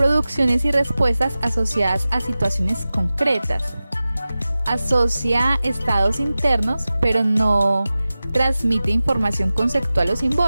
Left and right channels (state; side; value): inverted; both; correlation -0.95